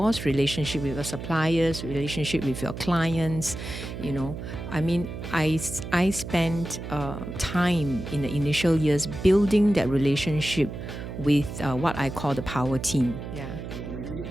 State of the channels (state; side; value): noise; right; hum, 8 dB below the sound